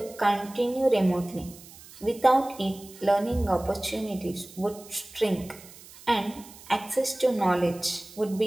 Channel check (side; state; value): right; noise; hiss, 20 dB below the sound